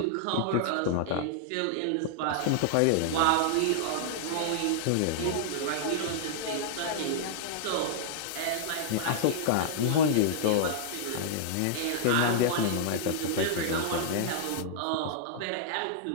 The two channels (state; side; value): different; both; correlation -0.01